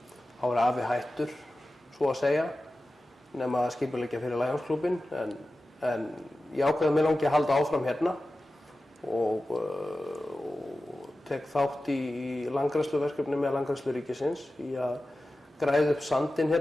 Þá var afi hættur, svo að segja, nema að skipuleggja fyrir Lionsklúbbinn, en ég ákveði að mér langi að halda áfram hérna og tek þátt í landgræðsluverkefni með Landgræðslu ríkisins í að græða upp sandinn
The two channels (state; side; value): normal; both; correlation 0.95